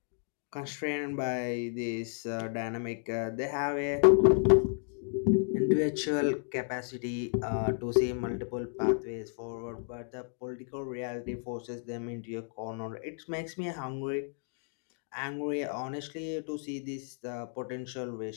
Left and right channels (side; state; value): right; silent; 56 dB below the other